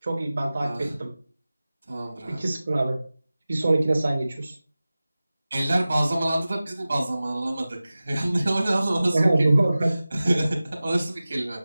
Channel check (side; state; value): both; inverted; correlation -0.97